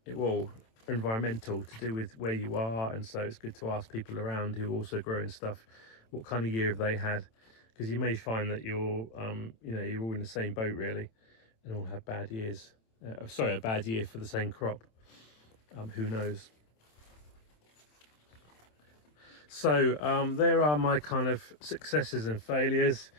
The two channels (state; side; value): late; right; 27 ms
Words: environmental, to do with where you are, and so it's good to ask people around who are also growing stuff what kind of year have they had, because you may find that you're you know, you're all in the same boat really, and all have bad years. A bad year for the same crop. Who knows? So there are my kind of successes and failures.